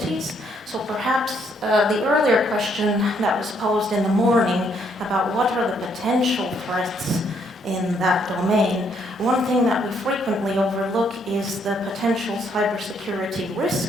So perhaps the earlier question that was posed in the morning about what are the potential threats in that domain, one thing that we frequently overlook is the potential cybersecurity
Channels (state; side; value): normal; both; correlation 0.70